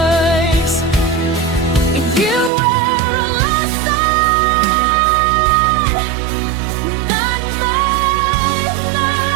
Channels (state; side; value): drops out; left; at 2.5 s